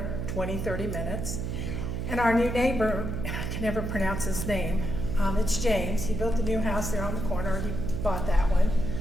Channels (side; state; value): right; noise; hum, 3 dB below the sound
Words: 20-30 minutes. And our new neighbor, I can never pronounce his name, it's James, he built a new house there on the corner, he bought that one.